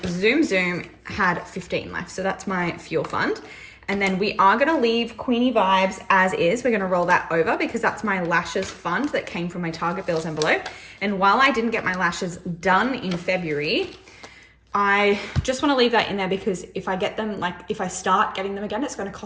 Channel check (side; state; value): both; identical; correlation 1.00